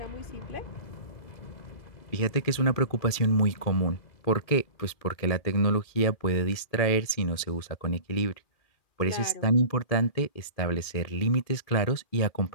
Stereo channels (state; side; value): late; right; 2.4 ms